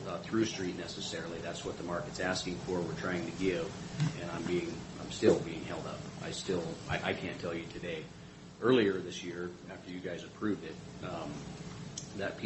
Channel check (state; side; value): identical; both; correlation 1.00